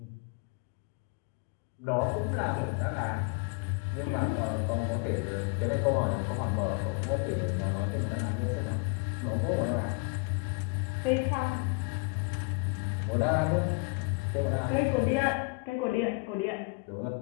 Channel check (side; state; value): right; quieter; 30.8 dB